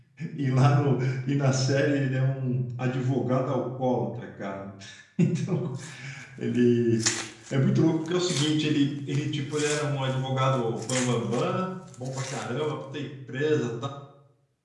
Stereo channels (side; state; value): both; identical; correlation 1.00